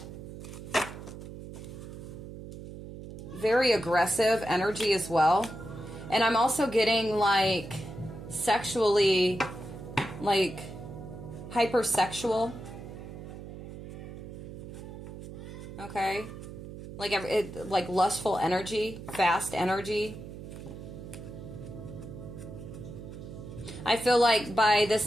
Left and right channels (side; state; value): right; noise; hum, 12 dB below the sound